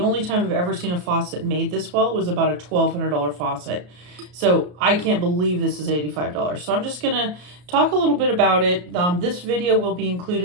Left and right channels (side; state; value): left; late; 34 ms